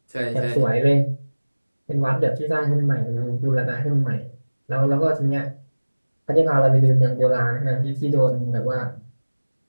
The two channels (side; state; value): both; inverted; correlation -1.00